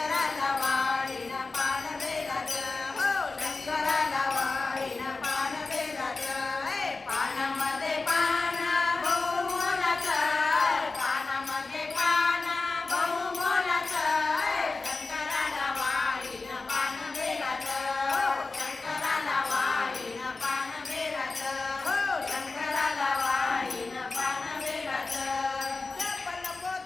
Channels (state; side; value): quieter; right; 3.8 dB